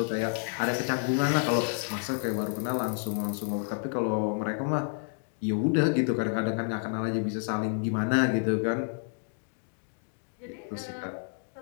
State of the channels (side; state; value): right; silent; 58 dB below the other